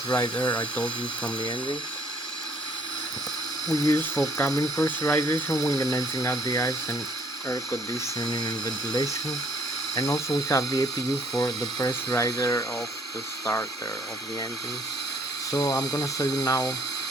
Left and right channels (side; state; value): both; normal; correlation 0.62